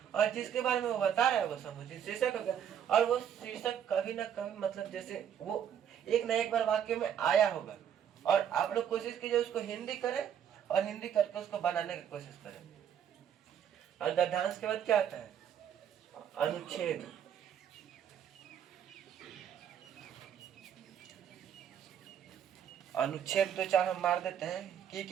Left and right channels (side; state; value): left; quieter; 9.0 dB